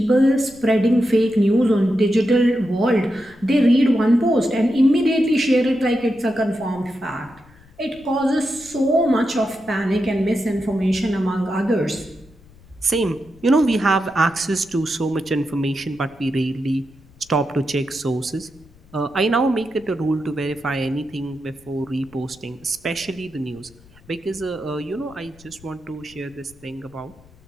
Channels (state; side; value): noise; left; rumble, 26 dB below the sound